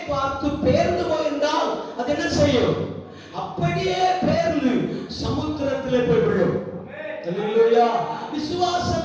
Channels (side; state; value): both; identical; correlation 1.00